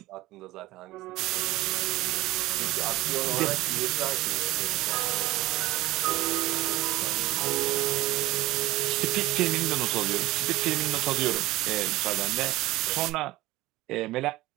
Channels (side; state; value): left; quieter; 17.9 dB